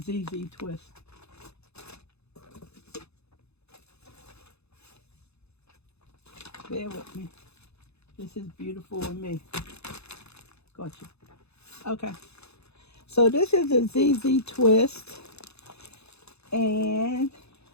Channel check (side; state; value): right; late; 0.79 ms